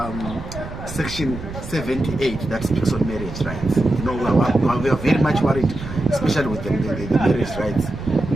Section 78 that speaks on marriage rights. You know, we are very much worried, especially with the marriage rights.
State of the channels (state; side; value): noise; right; rumble, 10 dB below the sound